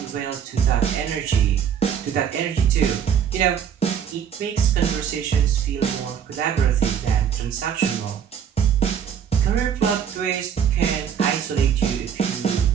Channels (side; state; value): left; quieter; 8.2 dB